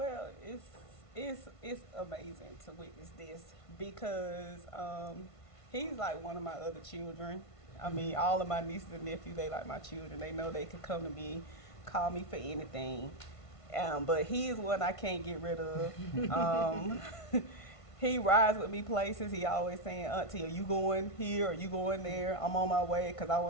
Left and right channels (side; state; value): right; late; 1.5 ms